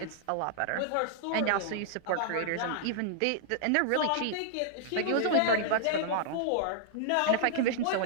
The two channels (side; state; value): both; different; correlation -0.01